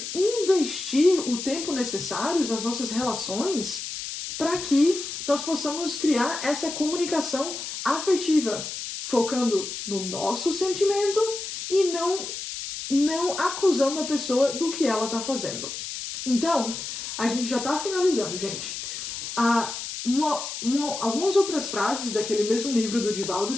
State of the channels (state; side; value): noise; left; hiss, 7 dB below the sound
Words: investir o tempo necessário nas nossas relações para que nós possamos criar essa comunicação afetiva, focando no nosso sentimento e não acusando a pessoa do que ela está fazendo. Então, a gente já está finalizando, gente. Algumas outras frases daquele mesmo livro do Divaldo,